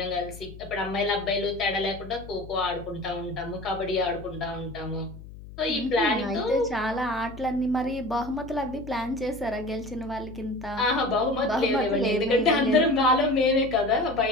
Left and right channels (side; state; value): left; noise; hum, 15 dB below the sound